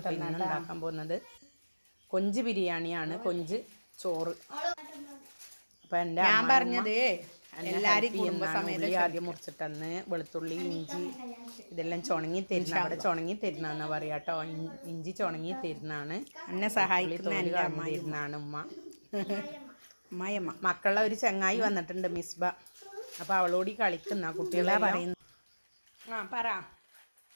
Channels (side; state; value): both; inverted; correlation -1.00